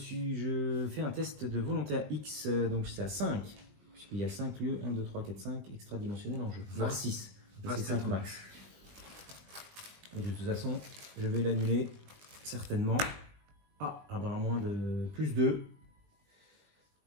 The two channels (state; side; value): late; left; 20 ms